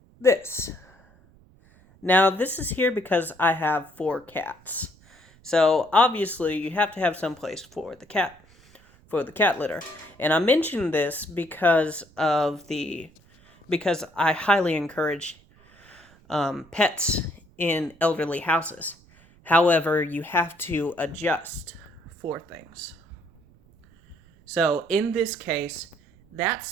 this. Now, this is here because I have 4 cats. So, obviously, you have to have some place for the cat litter. And I mention this because I highly encourage pets in elderly houses. However, you have to adjust for things. So, in this case, that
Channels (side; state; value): right; noise; rumble, 28 dB below the sound